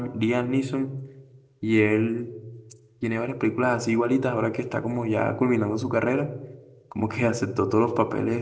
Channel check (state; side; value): identical; both; correlation 1.00